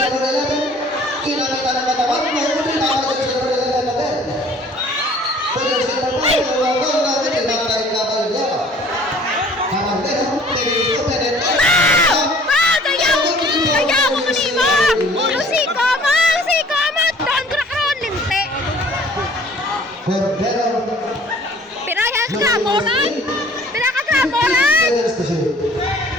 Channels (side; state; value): both; normal; correlation 0.52